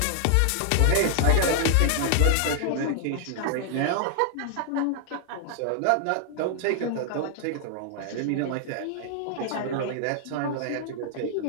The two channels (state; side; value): different; both; correlation 0.00